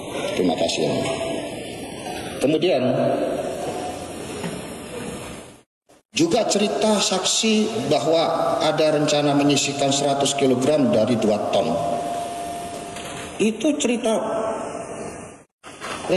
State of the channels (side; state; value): both; identical; correlation 1.00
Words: Terima kasih. Kemudian juga cerita saksi bahwa ada rencana menyisihkan 100 kg dari 2 ton. Itu cerita